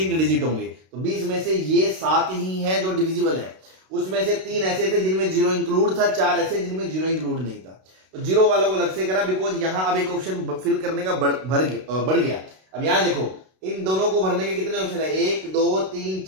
डिजिट होंगे। तो 20 में से ये 7 ही हैं जो डिविजिबल है। उसमें से 3 ऐसे थे जिनमें 0 इंक्लूड था, 4 ऐसे जिनमें 0 इंक्लूड नहीं था। तो 0 वालों को अलग से करा, बिकॉज यहां अब एक ऑप्शन फिल करने का बढ़ गया। अब यहां देखो, इन दोनों को भरने के कितने ऑप्शन है? 1 2 3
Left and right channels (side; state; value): left; late; 32 ms